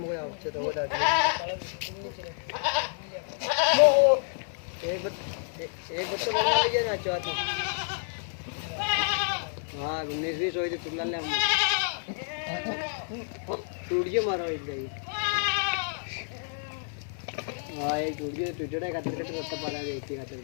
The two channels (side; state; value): right; silent; 58 dB below the other